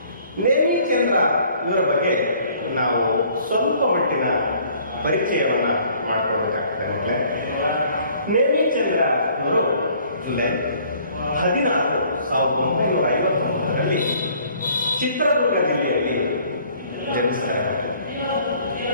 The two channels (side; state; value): both; inverted; correlation -0.58